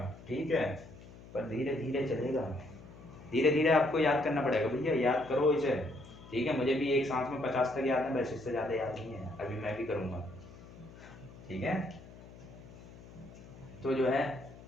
ठीक है, पर धीरे धीरे चलेगा, धीरे धीरे आपको याद करना पड़ेगा भैया, याद करो इसे, ठीक है। मुझे भी एक सांस में 50 तक याद है, बस इससे ज़्यादा याद नहीं है, अभी मैं भी करूँगा, ठीक है। तो जो है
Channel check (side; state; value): left; noise; hum, 18 dB below the sound